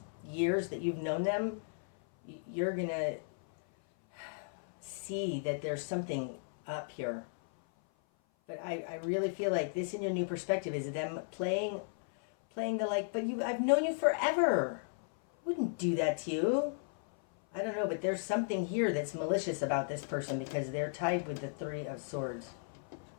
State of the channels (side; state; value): right; silent; 54 dB below the other